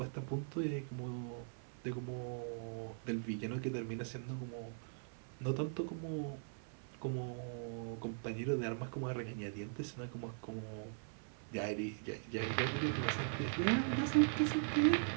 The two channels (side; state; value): left; silent; 51 dB below the other